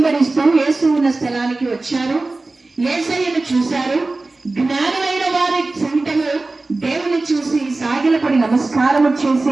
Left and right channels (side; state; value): left; quieter; 3.3 dB